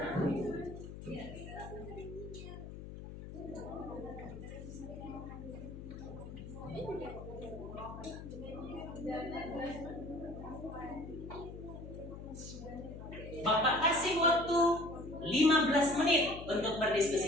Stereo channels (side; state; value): left; noise; hum, 11 dB below the sound